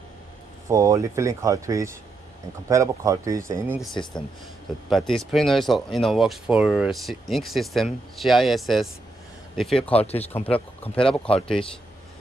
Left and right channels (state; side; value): quieter; left; 3.0 dB